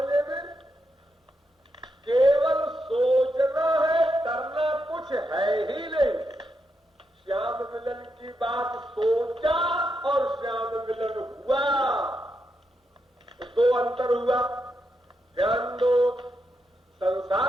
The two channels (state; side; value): normal; both; correlation 0.84